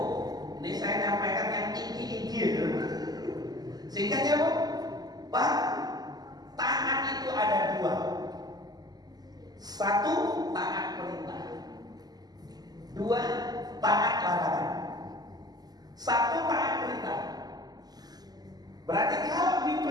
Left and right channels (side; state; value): left; late; 0.19 ms